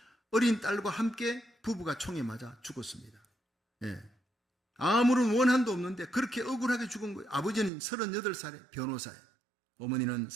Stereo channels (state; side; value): drops out; left; at 7.7 s